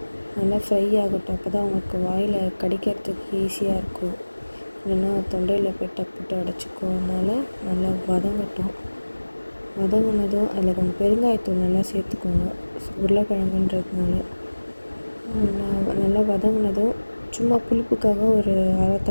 நல்லா ஃப்ரை ஆகட்டும். அப்போ தான் உங்களுக்கு வாயில் கடிக்கிறதுக்கு ஈஸியாக இருக்கும். இல்லைன்னா தொண்டையில் போய் டப்புட்டு அடைச்சிக்கும். அதனால் நல்லா வதங்கட்டும். வதங்கினதும் அதில் கொஞ்சம் பெருங்காயத்தூள் நல்லா சேர்த்துக்கோங்க. உருளைக்கிழங்குன்றதுனால நல்லா வதங்கினதும் சும்மா புளிப்புக்காக ஒரு அரை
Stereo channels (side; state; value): both; inverted; correlation -1.00